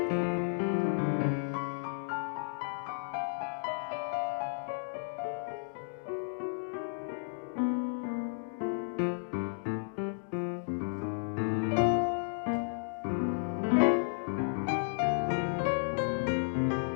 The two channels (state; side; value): silent; right; digital silence